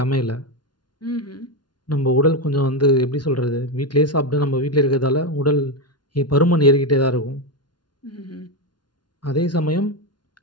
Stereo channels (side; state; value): right; late; 0.70 ms